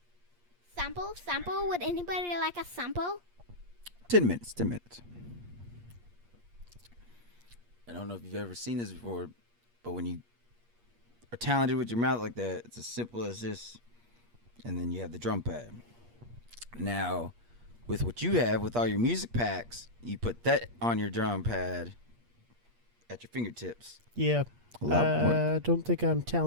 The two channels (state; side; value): late; left; 8.5 ms